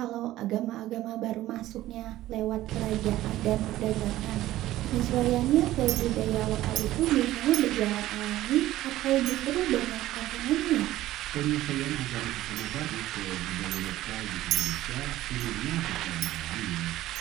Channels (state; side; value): quieter; left; 15.1 dB